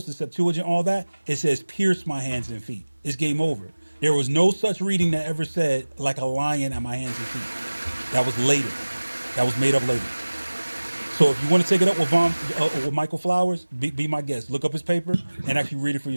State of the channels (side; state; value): both; inverted; correlation -1.00